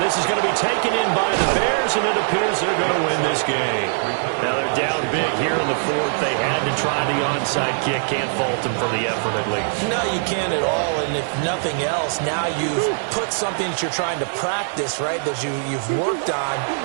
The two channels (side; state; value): left; silent; 65 dB below the other